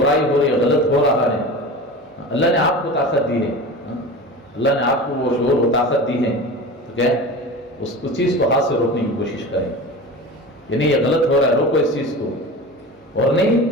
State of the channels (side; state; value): both; normal; correlation 0.32